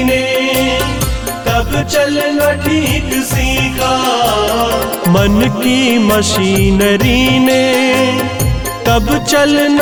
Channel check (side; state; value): both; identical; correlation 1.00